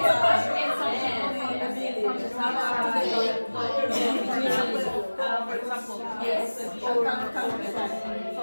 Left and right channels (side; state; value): both; inverted; correlation -1.00